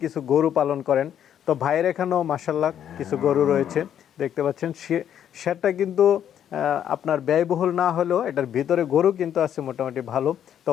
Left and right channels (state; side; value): quieter; right; 9.7 dB